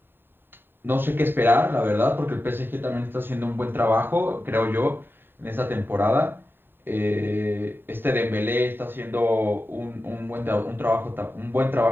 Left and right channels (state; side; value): late; left; 0.098 ms